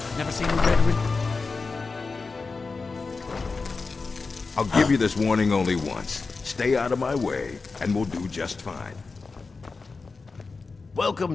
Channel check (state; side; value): quieter; right; 4.2 dB